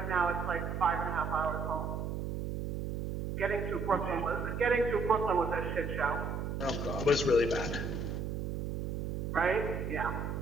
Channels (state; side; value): noise; right; hum, 2 dB below the sound